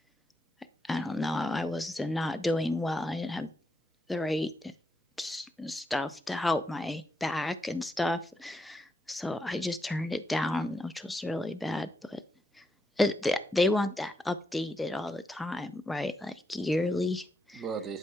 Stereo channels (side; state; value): both; normal; correlation 0.83